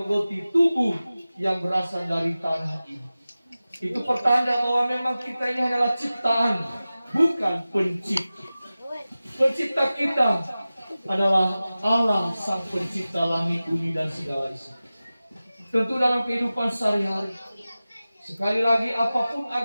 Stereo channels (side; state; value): both; inverted; correlation -0.96